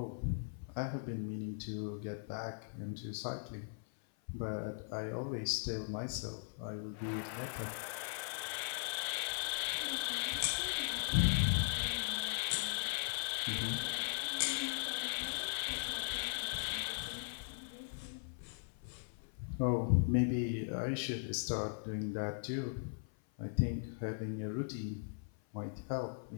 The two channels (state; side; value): silent; right; 52 dB below the other